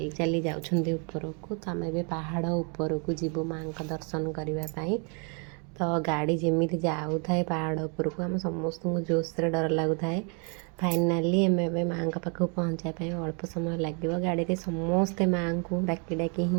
जाउछन्ते ऊपर को। तो आम ए पहाड़ ऊपर को जीवु माँ दर्शन करने। तो गाड़ी जमी जाऊ थाए पहाड़ उपर को आम समस्त जोश से डर लगुए। फाइनाली आम माँ पाखक पहुँचापी अल्प समय लगे। गाड़ी में समस्ते माँ को डाकी डाकी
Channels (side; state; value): left; quieter; 36.9 dB